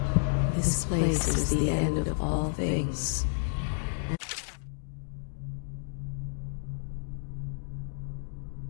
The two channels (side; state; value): right; silent; digital silence